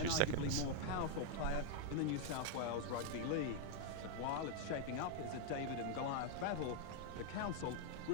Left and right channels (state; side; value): different; both; correlation 0.00